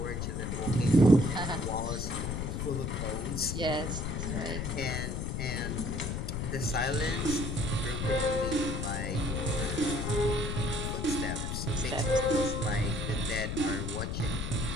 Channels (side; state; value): left; noise; rumble, 2 dB below the sound